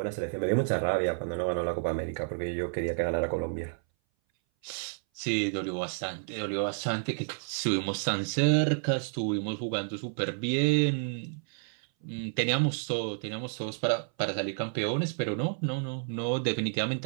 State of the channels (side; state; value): left; silent; 58 dB below the other